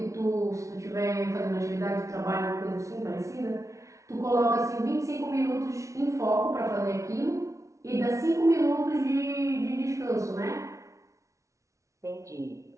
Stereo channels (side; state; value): left; late; 0.15 ms